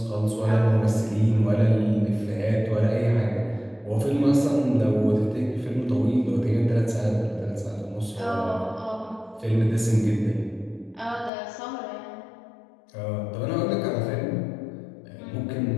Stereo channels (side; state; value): right; drops out; at 11.3 s